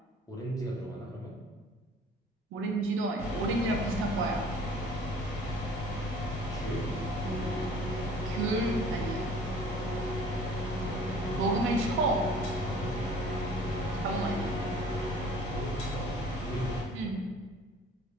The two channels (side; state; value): both; normal; correlation 0.50